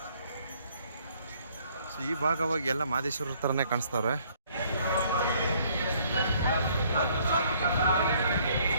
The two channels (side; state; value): both; inverted; correlation -0.63